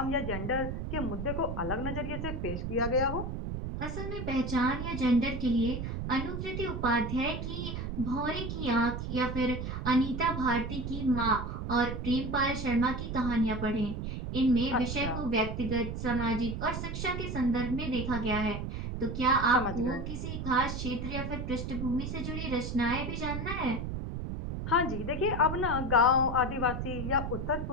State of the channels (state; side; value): noise; right; rumble, 4 dB below the sound